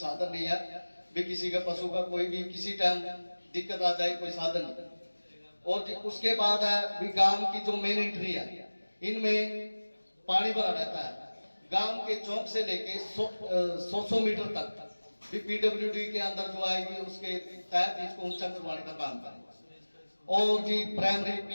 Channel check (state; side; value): inverted; both; correlation -1.00